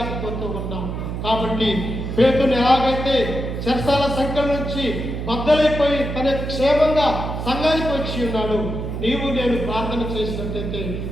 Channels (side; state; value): right; noise; hum, 5 dB below the sound